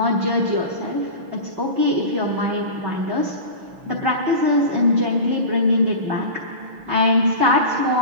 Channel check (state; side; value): late; left; 6.1 ms